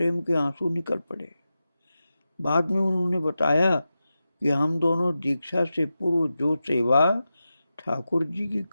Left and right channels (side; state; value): both; inverted; correlation -0.92